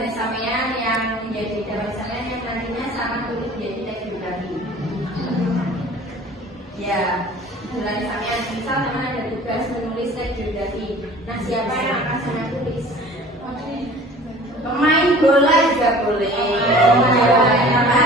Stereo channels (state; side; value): normal; both; correlation 0.46